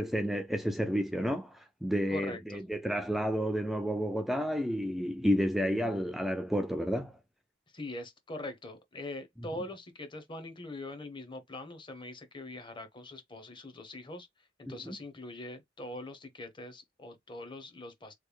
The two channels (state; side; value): normal; both; correlation 0.86